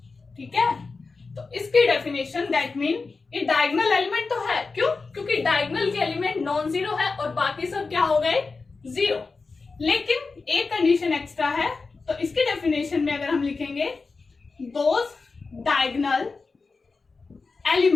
ठीक है। तो इसकी डेफिनेशन दैट मीन ये डायगोनल एलिमेंट तो है, क्यों, क्योंकि डायगोनल के एलिमेंट नॉन जीरो है और बाकी सब क्या हो गए 0, लेकिन एक कंडीशन एक्स्ट्रा है। तो इसके डेफिनेशन में अगर हम लिखेंगे दोज डायगोनल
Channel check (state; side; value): quieter; right; 4.2 dB